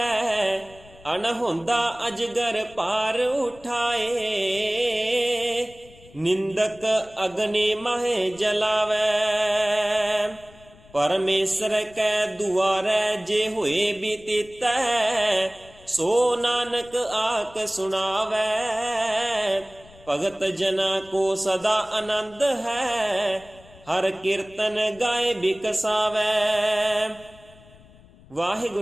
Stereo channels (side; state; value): left; noise; rumble, 24 dB below the sound